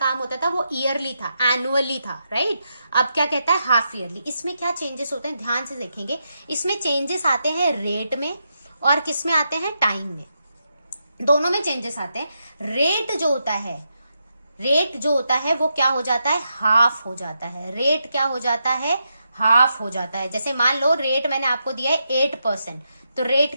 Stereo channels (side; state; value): both; inverted; correlation -0.84